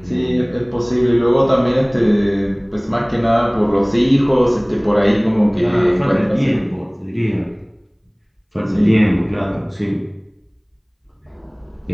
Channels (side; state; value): both; identical; correlation 1.00